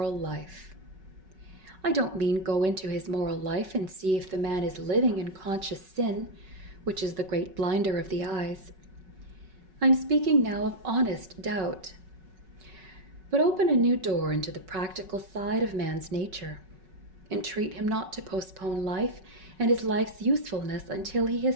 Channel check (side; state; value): left; late; 5.4 ms